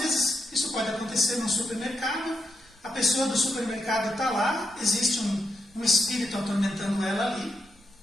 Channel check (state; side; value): normal; both; correlation 0.83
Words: isso pode acontecer num supermercado, a pessoa do supermercado está lá, existe um espírito atormentando ela ali,